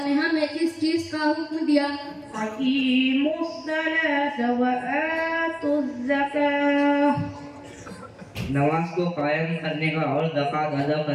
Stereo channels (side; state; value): both; identical; correlation 1.00